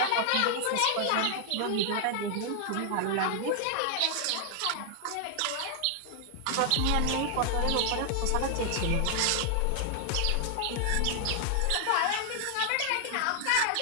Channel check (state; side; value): different; both; correlation 0.00